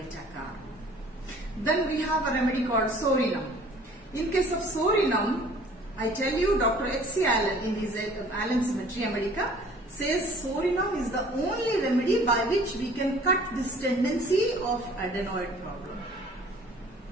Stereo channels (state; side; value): normal; both; correlation 0.52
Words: carb. Then we have a remedy called Sorinum. In case of Sorinum, I tell you, Dr. H.C. Allen in his Allen's Materia Medica says Sorinum is the only remedy by which we can cut this tendency of adenoid problem.